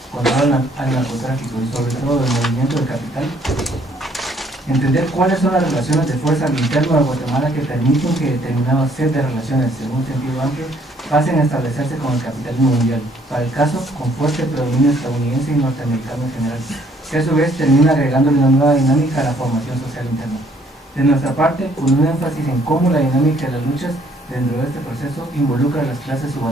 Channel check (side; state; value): both; normal; correlation 0.64